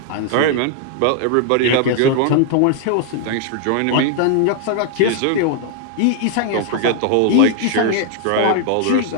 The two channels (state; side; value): different; both; correlation 0.00